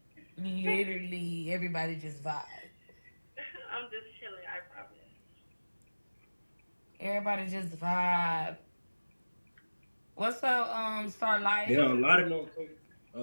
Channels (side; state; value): both; inverted; correlation -1.00